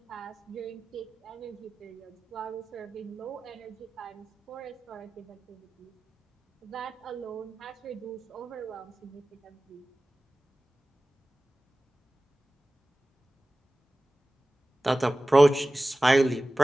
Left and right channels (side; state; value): both; normal; correlation 0.97